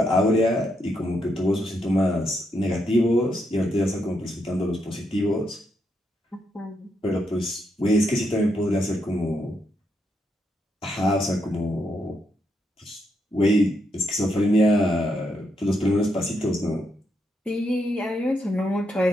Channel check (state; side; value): normal; both; correlation 0.80